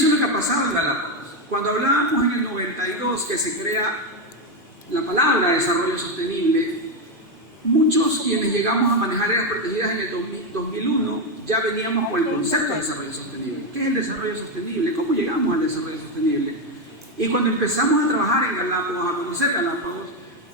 es lo que ha pasado en Galápagos. Cuando hablábamos en el 92 que se crea la palabra desarrollo sostenible, muchos quienes llegamos a manejar áreas protegidas en el 2001 ya veníamos con el concepto de desarrollo sostenible. ¿Qué es el desarrollo sostenible? ¿Cómo llegamos al desarrollo sostenible? Y cuando empezamos a trabajar en Galápagos, a conocer Galápagos,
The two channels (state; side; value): normal; both; correlation 0.08